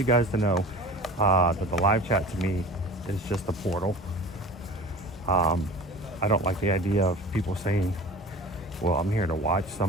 guys to know that the live chat to me is just a portal. I don't like the idea of people saying, well, I'm here to watch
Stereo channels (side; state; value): both; normal; correlation 0.39